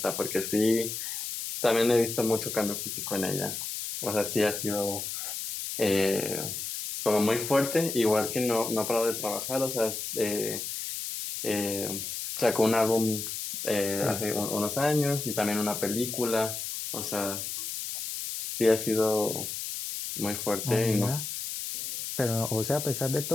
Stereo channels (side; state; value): left; noise; hiss, 5 dB below the sound